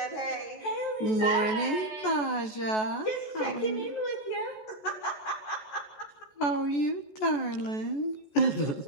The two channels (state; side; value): late; right; 14 ms